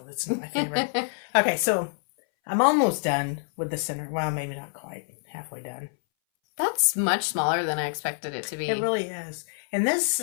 That's not my favorite. Okay, so I'm almost done with the center. Well, maybe not quite. Halfway done. That's much smaller than I expected it to be. It really is. And this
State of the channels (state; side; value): silent; right; 60 dB below the other